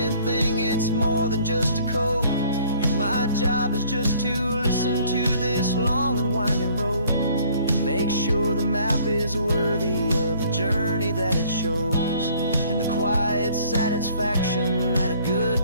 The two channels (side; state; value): both; inverted; correlation -0.58